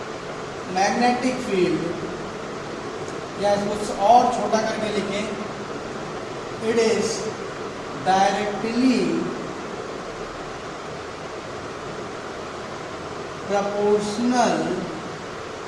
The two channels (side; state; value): both; identical; correlation 1.00